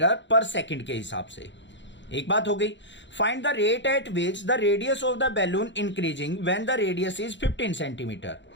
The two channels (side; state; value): right; late; 0.53 ms